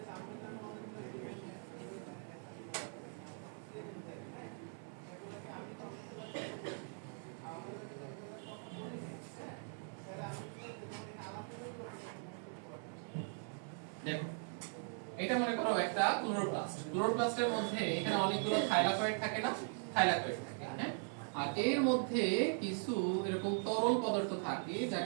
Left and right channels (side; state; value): left; silent; 51 dB below the other